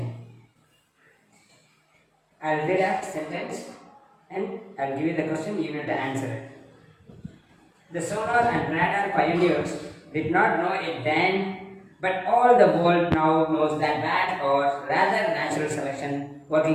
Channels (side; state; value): both; identical; correlation 1.00